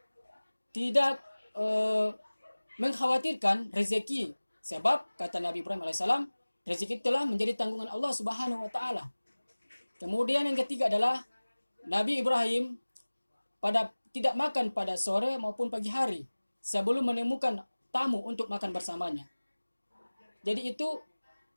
tidak mengkhawatirkan rezeki. Sebab kata Nabi Ibrahim alaihissalam, rezeki telah menjadi tanggungan Allah Subhanahu wa taala. Kemudian yang ketiga adalah Nabi Ibrahim tidak makan pada sore maupun pagi hari sebelum menemukan tamu untuk makan bersamanya. Jadi itu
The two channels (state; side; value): inverted; both; correlation -1.00